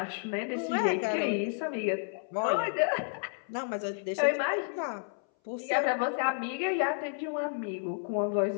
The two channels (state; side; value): silent; right; 57 dB below the other